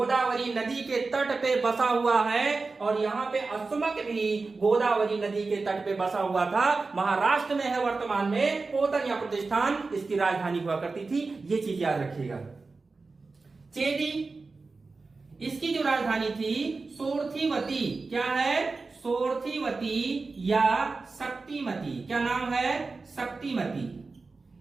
नदी के तट पे बसा हुआ है। और यहाँ पे अश्वमत भी गोदावरी नदी के तट पे बसा हुआ था, महाराष्ट्र में है वर्तमान में। पोतन या प्रतिष्ठान इसकी राजधानी हुआ करती थी, ये चीज याद रखिएगा। चेदी, इसकी जो राजधानी थी सोरथीवती। क्या है, सोरथीवती या शक्तिमती। क्या नाम है, शक्तिमती।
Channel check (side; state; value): left; quieter; 3.9 dB